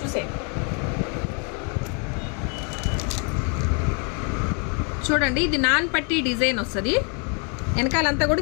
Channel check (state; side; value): quieter; right; 37.0 dB